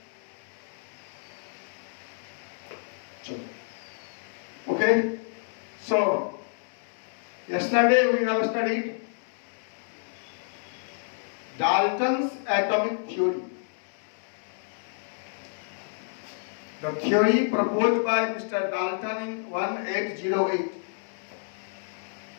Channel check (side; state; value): right; silent; digital silence